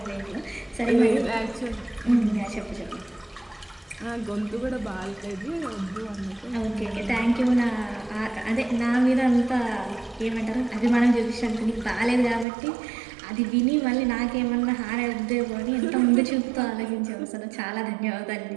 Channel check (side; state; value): left; drops out; at 12.5 s